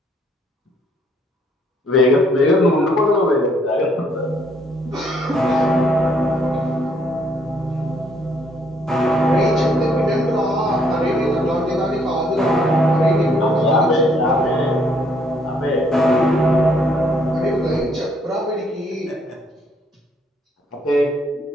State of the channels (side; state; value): both; normal; correlation 0.67